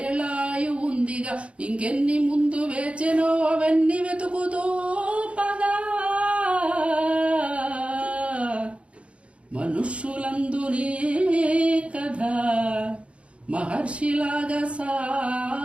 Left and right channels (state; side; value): late; left; 0.061 ms